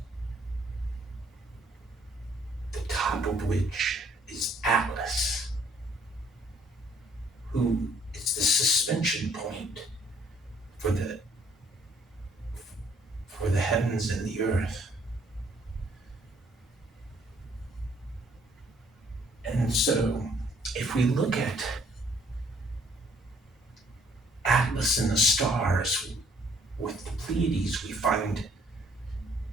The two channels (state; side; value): normal; both; correlation 0.63